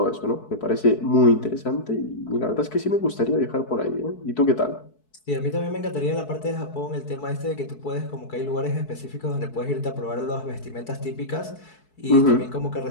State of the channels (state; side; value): late; right; 4.6 ms